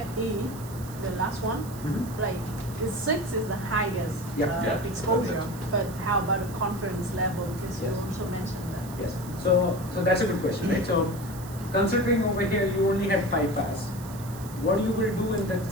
the last one, like the 6 is the highest Yep. Yeah. exposure. But how about the confidence level? Because you Yes. also mentioned that. Yes. So that's a good question, right? So considering over here you only had 5 paths, what you will do in that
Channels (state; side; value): noise; right; hiss, 17 dB below the sound